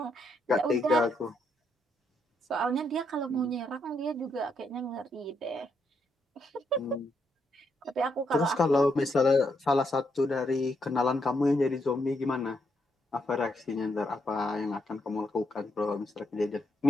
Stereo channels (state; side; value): normal; both; correlation 0.78